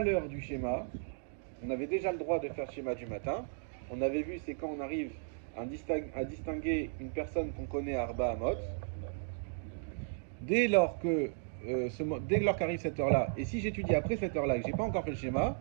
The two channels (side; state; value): left; silent; digital silence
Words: du schéma, on avait déjà le droit de faire le schéma du matin. On avait vu, c'est quand on arrive à distinguer une personne qu'on connaît à Arba Amot. Dès lors qu'arrive cette heure-là, et si j'étudie après cette heure-là et que j'ai pas encore fait le schéma,